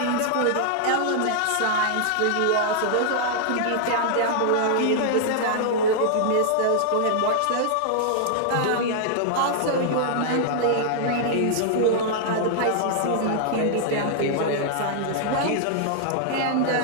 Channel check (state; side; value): different; both; correlation -0.01